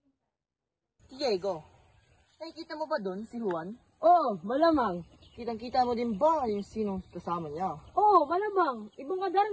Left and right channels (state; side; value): identical; both; correlation 1.00